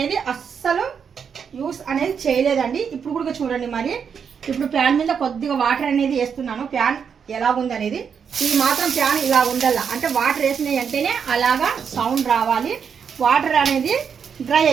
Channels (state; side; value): quieter; left; 6.9 dB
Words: అస్సలు యూస్ అనేది చేయలేదండి. ఇప్పుడు కూడా చూడండి మరి. ఇప్పుడు ప్యాన్ మీద కొద్దిగా వాటర్ అనేది వేస్తున్నాను. ప్యాన్ ఎలాగుంది అనేది, ఇది మాత్రం ప్యాన్ ఇలా ఉండాల, అంటే వాటర్ వేసినాయి అంటేనే అలాగా సౌండ్ రావాలి. వాటర్ అనేది డ్రై